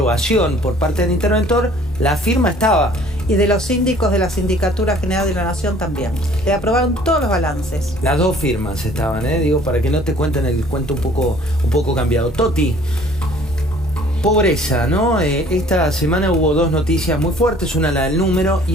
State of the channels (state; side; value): normal; both; correlation 0.54